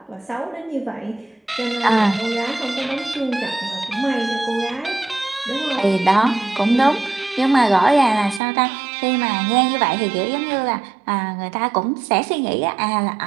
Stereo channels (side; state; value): left; drops out; at 8.4 s